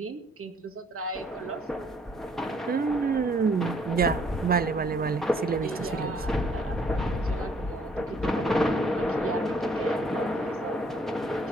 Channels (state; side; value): normal; both; correlation 0.63